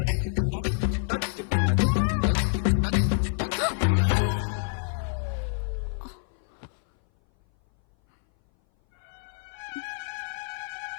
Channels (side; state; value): right; silent; 58 dB below the other